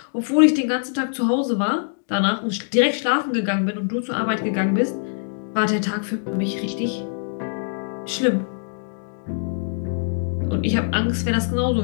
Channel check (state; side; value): silent; right; digital silence